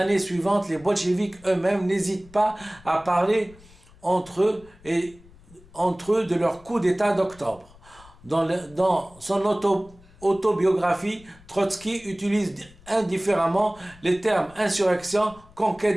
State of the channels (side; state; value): left; noise; rumble, 24 dB below the sound